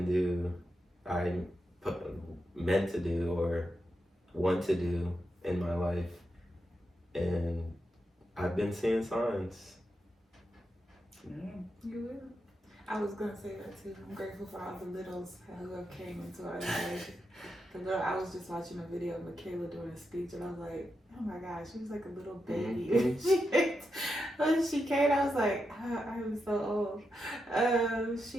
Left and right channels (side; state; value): both; normal; correlation 0.86